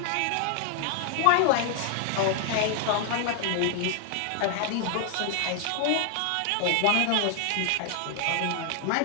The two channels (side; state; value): both; different; correlation 0.00